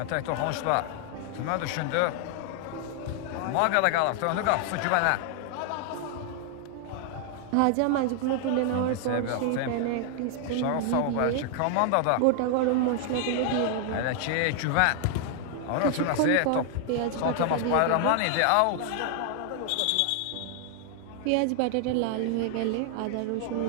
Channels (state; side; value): different; both; correlation 0.00